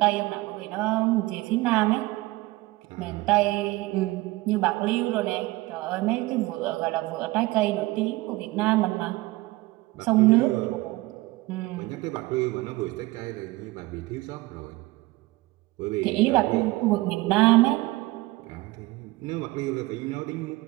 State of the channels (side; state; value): left; quieter; 20.1 dB